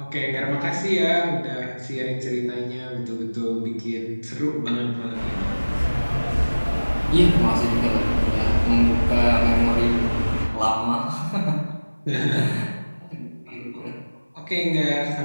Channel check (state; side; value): inverted; both; correlation -1.00